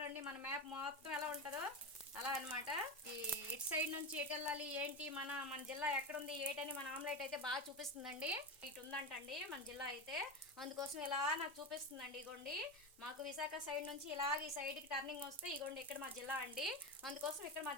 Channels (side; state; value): both; normal; correlation 0.18